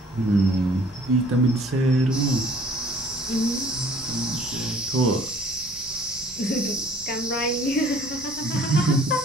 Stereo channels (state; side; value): normal; both; correlation 0.54